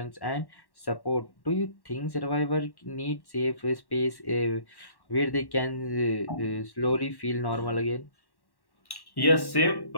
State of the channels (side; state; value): right; late; 1.1 ms